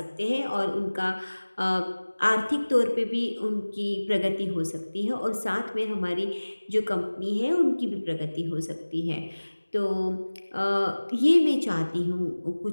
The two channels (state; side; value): inverted; both; correlation -1.00